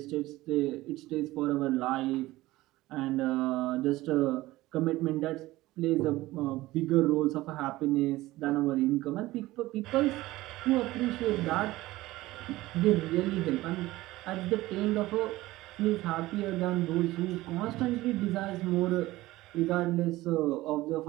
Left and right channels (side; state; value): left; quieter; 17.9 dB